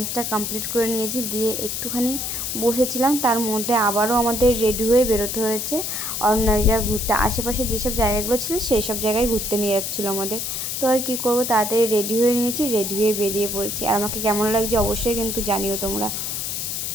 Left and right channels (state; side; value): noise; left; hiss, 3 dB below the sound